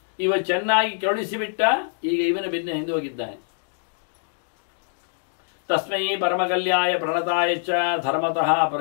ಇವ ಚೆನ್ನಾಗಿ ಕರುಣಿಸಿಬಿಟ್ಟ. ಈಗ ಇವನ ಬೆನ್ನ ಹಿಂದೆ ಹೋಗಿದ್ದಾನೆ. ತಸ್ಮೈ ಪರಮಕಲ್ಯಾಯ ಪ್ರಣತಾಯ ಚ ಧರ್ಮತಃ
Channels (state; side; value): silent; right; digital silence